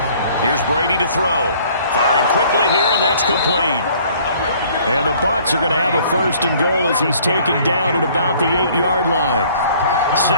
Here's Brady to throw. Firing quickly here, and that's complete. And the Bucs are going to have a 1st and goal as he's taken down at about the 8-yard line.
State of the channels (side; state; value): both; inverted; correlation -0.57